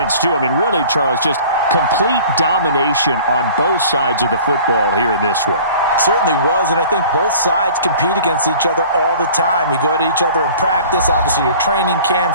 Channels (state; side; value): inverted; both; correlation -0.46